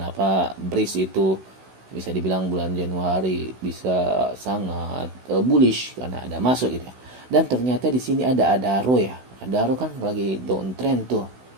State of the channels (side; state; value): left; late; 16 ms